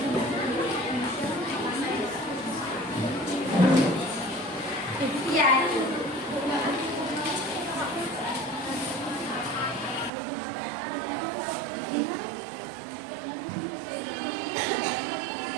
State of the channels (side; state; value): left; drops out; at 10.1 s